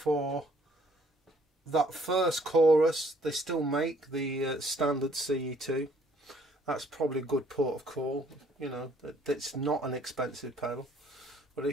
that first chorus, they still make the standard CE2. That's probably a good port of call. You know, it's not an expensive pedal, but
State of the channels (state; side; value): normal; both; correlation 0.62